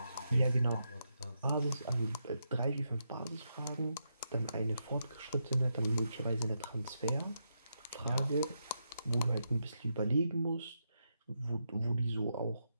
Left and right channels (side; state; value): both; inverted; correlation -0.83